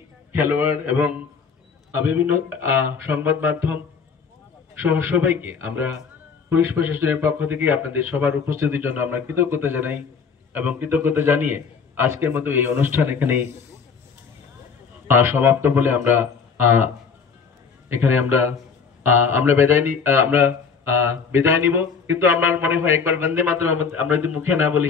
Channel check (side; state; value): right; quieter; 5.8 dB